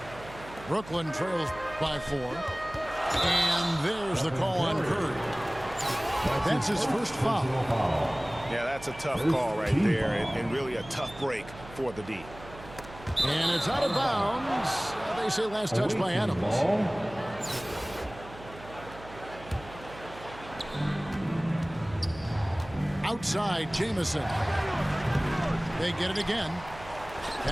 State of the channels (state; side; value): noise; right; hum, 17 dB below the sound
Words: Brooklyn trails by 4. And there's the call on Curry. That's his first foul. Yeah, that's a tough call right there, and really a tough break for the D. And it's out of bounds. They say last touch by Adams. Outside, Jamison. They get it again.